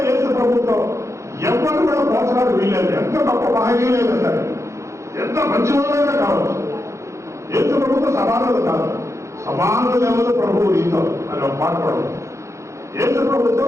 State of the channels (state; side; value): late; left; 0.14 ms